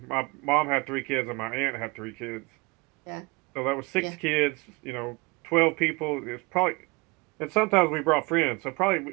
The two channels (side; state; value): left; quieter; 26.4 dB